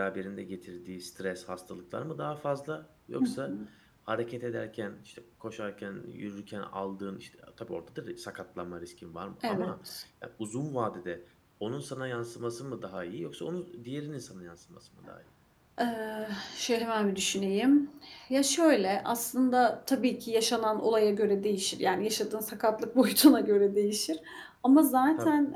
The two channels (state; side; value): identical; both; correlation 1.00